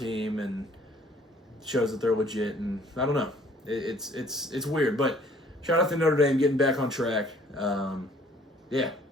and shows that they're legit. And I don't know. It's weird. But shout out to Notre Dame getting back on track. Yeah,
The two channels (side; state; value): both; normal; correlation 0.58